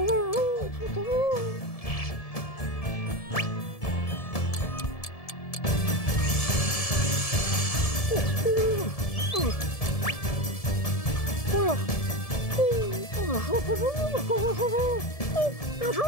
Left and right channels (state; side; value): late; right; 1.7 ms